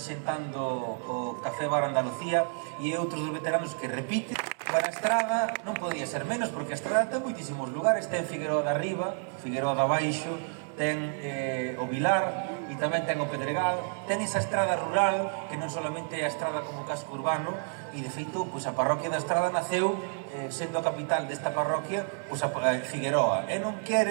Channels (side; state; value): left; silent; 56 dB below the other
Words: o Café Bar Andalucía, e outros dos veteranos que repite. Para a Estrada non podía ser menos, porque a Estrada ten moitísimos lugares, ten Figueroa de Arriba, Figueroa de Abaixo, ten o Vilar, e tamén ten o Pedregal, ten esa estrada rural, que non solamente é a estrada como casco urbano, e de feito, pois a parroquia da Estrada naceu sendo a capital desta parroquia, pois a Figueroa, e non